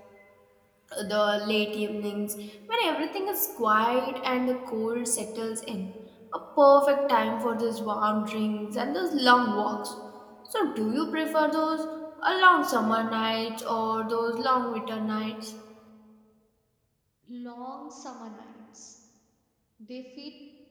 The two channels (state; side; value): identical; both; correlation 1.00